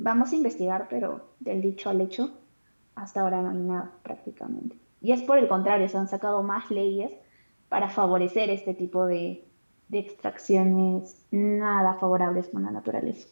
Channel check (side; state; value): both; inverted; correlation -1.00